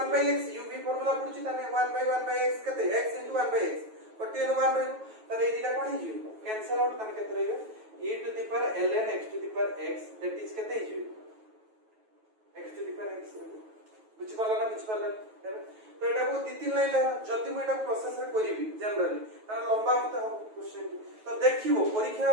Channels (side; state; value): left; late; 9.2 ms